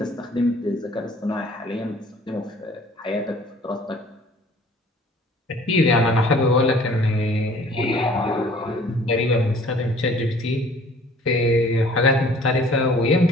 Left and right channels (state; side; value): normal; both; correlation 0.53